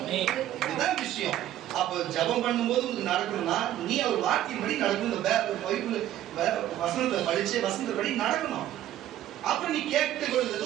இதுதான் விஷயம். அப்ப ஜெபம் பண்ணும்போது உங்களுக்கு நடக்கணும்னா நீ அவர் வார்த்தையின்படி நடக்கணும். இந்த பைபிள் வசனத்தை படிச்சு வசனத்தை நடக்கணும். அப்புறம் நீ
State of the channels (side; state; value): left; quieter; 12.6 dB